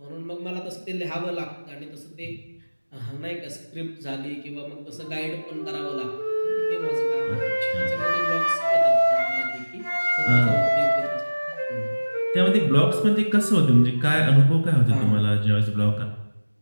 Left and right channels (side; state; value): both; inverted; correlation -1.00